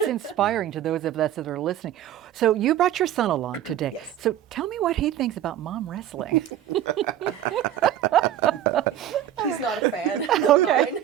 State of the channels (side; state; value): left; quieter; 11.3 dB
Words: inspiring to those of us that are listening. So you brought your son along today. Yes. So tell me what he thinks about mom wrestling. He's not a fan of mine.